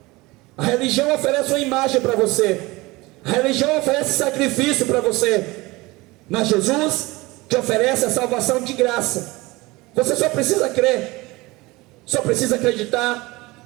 A religião oferece uma imagem para você, a religião oferece sacrifício para você, mas Jesus te oferece a salvação de graça. Você só precisa crer, só precisa acreditar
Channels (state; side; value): quieter; left; 21.9 dB